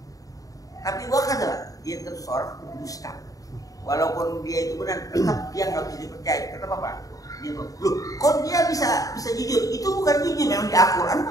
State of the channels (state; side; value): late; right; 0.17 ms